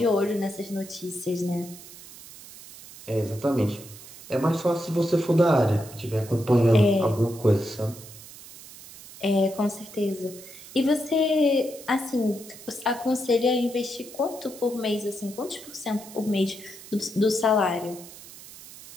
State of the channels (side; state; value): right; noise; hiss, 17 dB below the sound